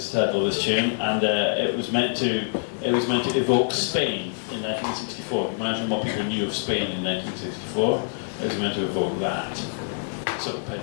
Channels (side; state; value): right; silent; 62 dB below the other